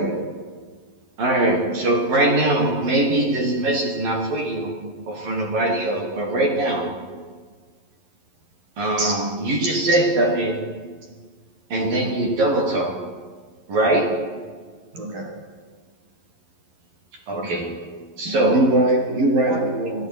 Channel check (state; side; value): late; left; 11 ms